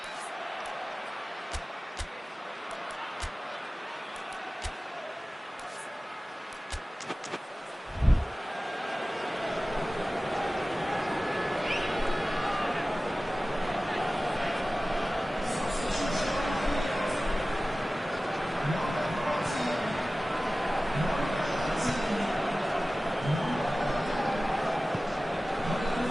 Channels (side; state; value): both; normal; correlation 0.97